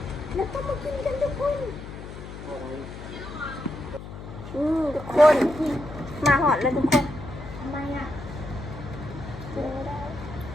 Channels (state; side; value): noise; left; hum, 12 dB below the sound